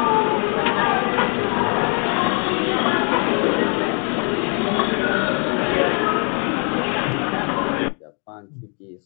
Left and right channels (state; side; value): quieter; right; 38.9 dB